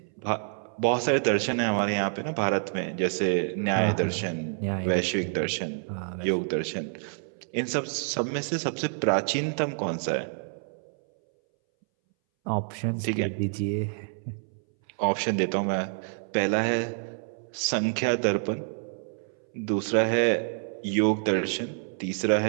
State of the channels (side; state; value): left; silent; 59 dB below the other